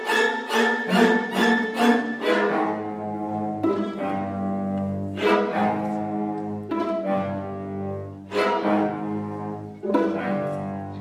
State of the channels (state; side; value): identical; both; correlation 1.00